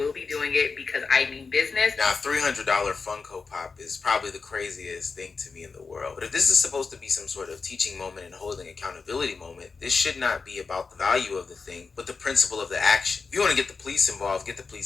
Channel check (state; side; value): quieter; right; 4.7 dB